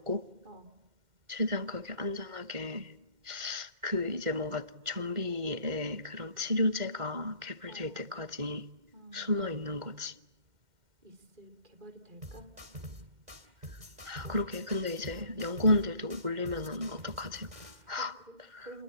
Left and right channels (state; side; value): late; left; 2.1 ms